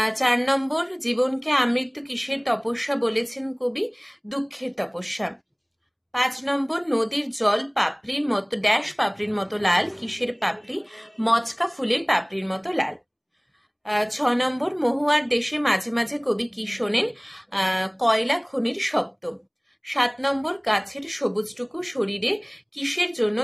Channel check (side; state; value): both; identical; correlation 1.00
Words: 4 নম্বর জীবনকে আমৃত্যু কিসের তপস্যা বলেছেন কবি? দুঃখের তপস্যা। 5 নম্বর নদীর জল পাপড়ির মতো ড্যাশ পাপড়ির মতো লাল, কিসের পাপড়ি? মচকা ফুলের পাপড়ির মতো লাল। 6 নম্বর মহুয়ার দেশে মাঝে মাঝে কবি কি শোনেন? কয়লা খনির শব্দ। 7 নম্বর গাছের সবুজটুকু শরীরে কিসের জন্য